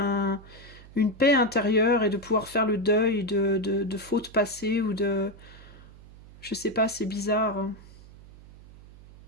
paix intérieure et de pouvoir faire le deuil de fautes passées ou de... Je sais pas, c'est bizarre. Hein.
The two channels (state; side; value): noise; right; hum, 20 dB below the sound